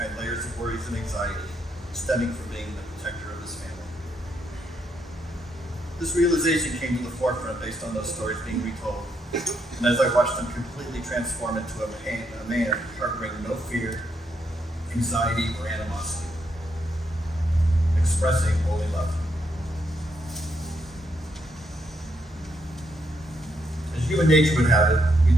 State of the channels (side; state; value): both; normal; correlation 0.78